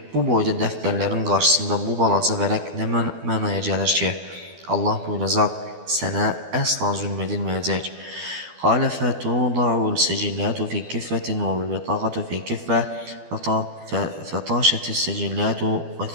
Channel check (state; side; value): late; left; 12 ms